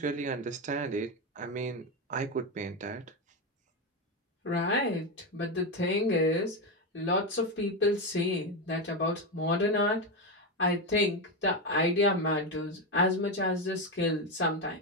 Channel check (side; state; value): both; normal; correlation 0.11